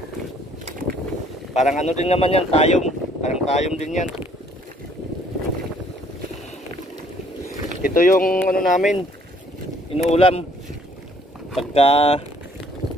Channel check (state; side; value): normal; both; correlation 0.61